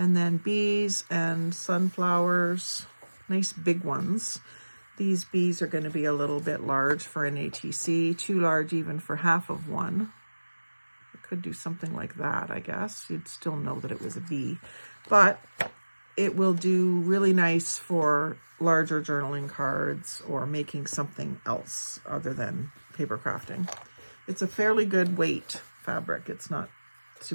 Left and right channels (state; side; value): inverted; both; correlation -1.00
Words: then bees and sunflowers, nice big ones. These bees are going to be a little bit large for an ATC, too large even for half of one. I could do something like that, I guess. You'd still know that it was a bee. But it will do really nice for larger journaling cards or making something else other than paper crafting. It's a fairly good weight fabric. It's not